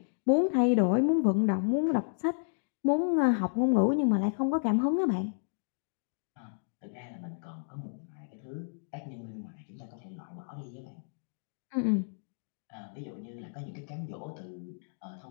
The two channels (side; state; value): right; silent; digital silence